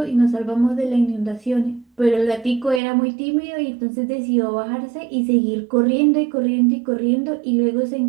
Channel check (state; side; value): drops out; left; at 2.8 s